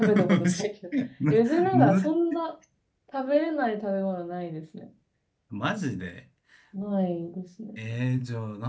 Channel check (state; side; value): identical; both; correlation 1.00